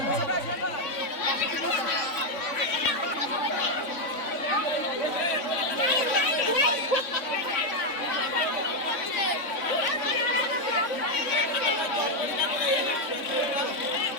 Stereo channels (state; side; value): late; right; 3.5 ms